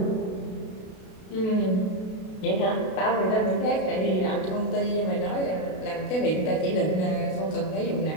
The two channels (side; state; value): right; late; 32 ms